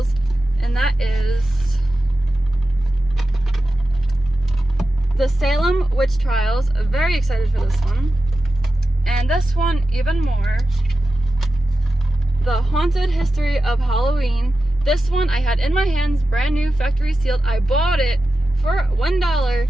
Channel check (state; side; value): normal; both; correlation 0.92